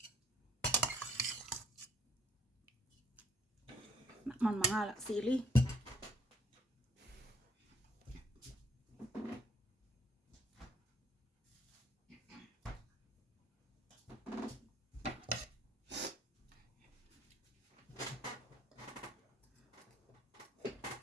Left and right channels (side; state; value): both; normal; correlation 0.61